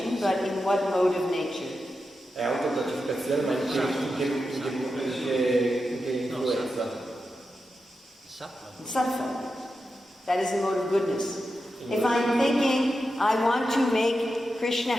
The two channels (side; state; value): both; normal; correlation 0.89